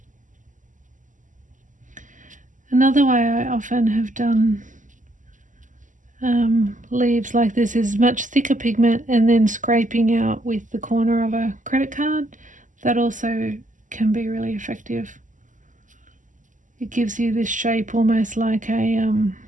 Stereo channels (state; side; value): late; left; 0.37 ms